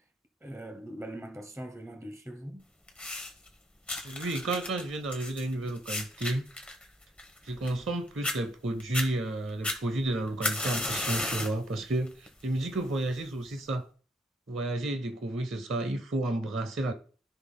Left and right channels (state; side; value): normal; both; correlation 0.71